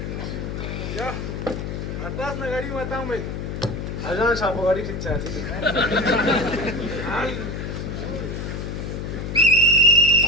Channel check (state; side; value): noise; left; hum, 5 dB below the sound